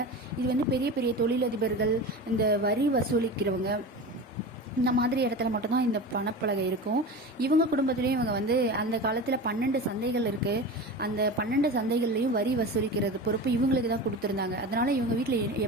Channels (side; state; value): both; normal; correlation 0.29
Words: இது வந்து பெரிய பெரிய தொழிலதிபர்கள், இந்த வரி வசூலிக்கிறவங்க, இந்த மாதிரி இடத்துல மட்டும்தான் இந்த பணப்பலகை இருக்கும். இவங்க குடும்பத்துலேயும் இவங்க வந்து அந்த காலத்தில் 12 சந்தைகள் இருக்குது. அந்த 12 சந்தைகள்லையும் வரி வசூலிக்கிறது பொறுப்பு இவங்களுக்கு தான் கொடுத்துருந்தாங்க. அதனால் இவங்க வீட்டில்